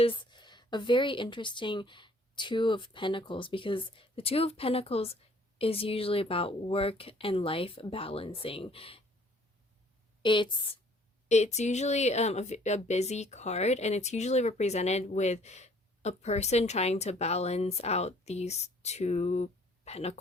a very interesting Two of Pentacles because the Two of Pentacles is usually about work and life balancing. It's usually a busy card, and it's usually represented with a person trying to balance out these two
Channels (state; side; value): normal; both; correlation 0.58